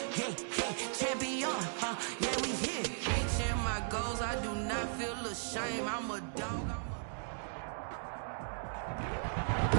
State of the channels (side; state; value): left; silent; digital silence